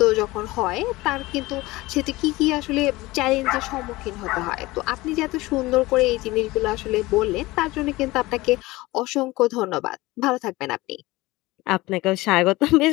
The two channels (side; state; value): right; quieter; 20.0 dB